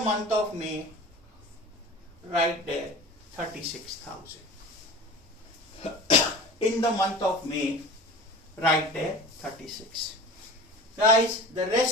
of May, write there 36,000. In the month of May, write there 36. Guys, the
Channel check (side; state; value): both; normal; correlation 0.36